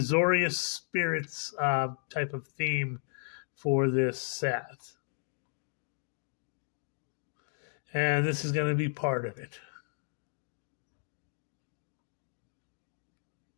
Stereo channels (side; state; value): right; silent; digital silence